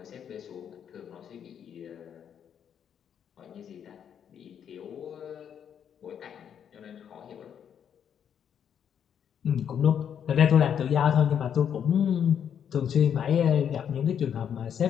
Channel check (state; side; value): quieter; right; 8.5 dB